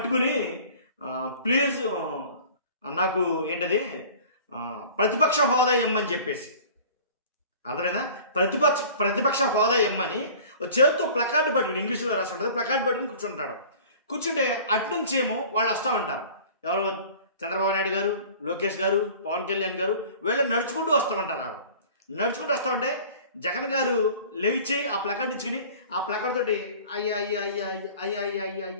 ప్లీజ్ నాకు ఏంటది ప్రతిపక్ష హోదా ఇమ్మని చెప్పేసి, అర్థమైనా, ప్రతిపక్ష హోదా ఇమ్మని చేతితో ప్లకార్డు పట్టుకుని, ఇంగ్లీష్లో రాసి ఉంటుంది, ప్లకార్డు పట్టుకుని కూర్చుంటాడు. కూర్చుంటే అట్నుంచి ఏమో వాళ్ళు వస్తూ ఉంటారు. ఎవరు? చంద్రబాబు నాయుడు గారు, లోకేష్ గారు, పవన్ కళ్యాణ్ గారు వీళ్ళు నడుచుకుంటూ వస్తూ ఉంటారు. నడుచుకుంటూ వస్తూ ఉంటే జగన్ గారు లేచి ఆ ప్లకార్డు ఇచ్చుకుని ఆ ప్లకార్డ్ తోటి అయ్యా అయ్యా అయ్యా అయ్యా అయ్యా అయ్యా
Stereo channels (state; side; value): inverted; both; correlation -0.45